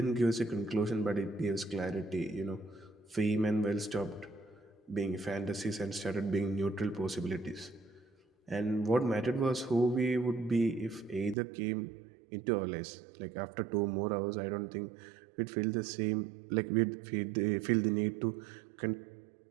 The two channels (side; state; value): left; drops out; at 11.4 s